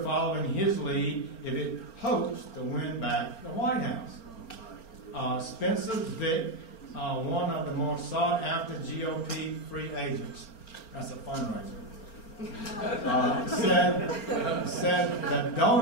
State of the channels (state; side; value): late; right; 4.4 ms